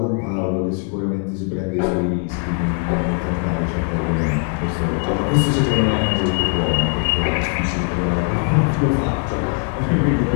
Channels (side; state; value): right; quieter; 38.5 dB